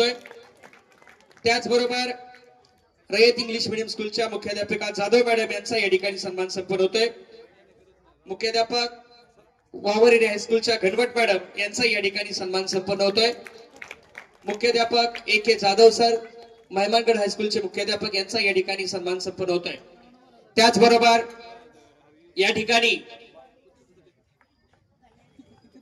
त्याचबरोबर रयत इंग्लिश मीडियम स्कूलच्या मुख्याध्यापिका जाधव मॅडम यांचा या ठिकाणी सन्मान संपन्न होतोय। मुख्याध्यापक वावरे हायस्कूलच्या घनवट मॅडम यांचा या ठिकाणी सन्मान संपन्न होतोय। मुख्याध्यापक AK जाधव सर मेहमानगड हायस्कूलचे मुख्याध्यापक यांचा या ठिकाणी सन्मान संपन्न होतोय। त्याचबरोबर या ठिकाणी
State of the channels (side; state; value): both; identical; correlation 1.00